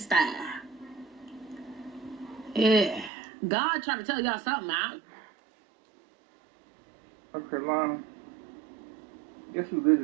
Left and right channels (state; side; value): drops out; left; at 3.1 s